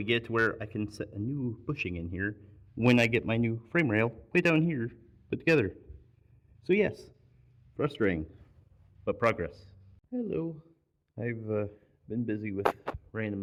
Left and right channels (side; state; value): both; identical; correlation 1.00